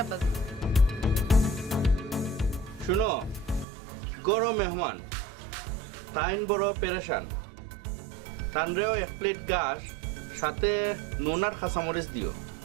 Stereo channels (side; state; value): left; drops out; at 3.7 s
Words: আব্বাজান। শুনো, গরো মেহমান তাইন বড় পেরেশান, তানরেও 1 প্লেট ঘাস সাথে নুন আর কাঁচামরিচ দিও।